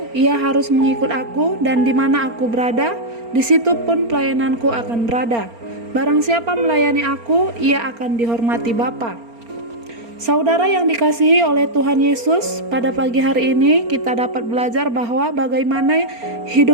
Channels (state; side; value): late; left; 4.3 ms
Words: ia harus mengikut aku, dan di mana aku berada, di situ pun pelayananku akan berada. Barang siapa melayani aku, ia akan dihormati Bapa. Saudara yang dikasihi oleh Tuhan Yesus, pada pagi hari ini kita dapat belajar bahwa bagaimana